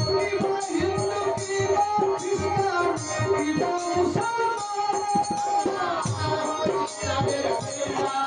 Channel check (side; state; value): both; identical; correlation 1.00